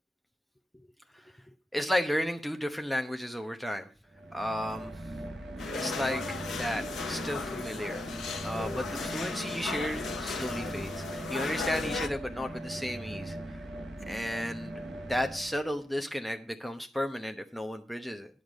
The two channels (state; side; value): normal; both; correlation 0.87